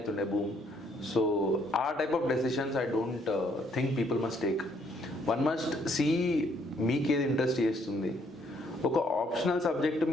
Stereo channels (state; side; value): normal; both; correlation 0.68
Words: బూమ్. సో ఆ type of decisions I don't think people must take. One must see మీకేది ఇంట్రెస్ట్ చేస్తుంది. ఒక ఆప్షనల్ సబ్జెక్ట్